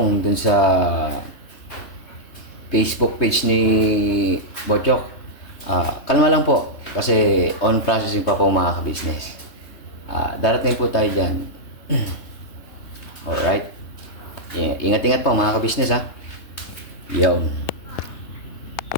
dun sa Facebook page ni Bochok, kalma lang po kasi on processing pa po mga ka-business. Darating po tayo dyan. Alright. Ingat-ingat po mga ka-business, Yo.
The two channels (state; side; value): late; right; 3.2 ms